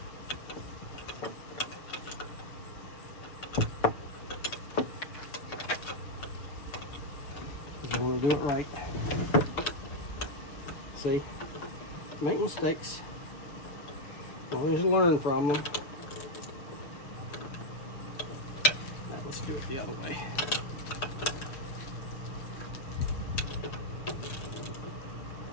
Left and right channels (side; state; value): right; late; 6.9 ms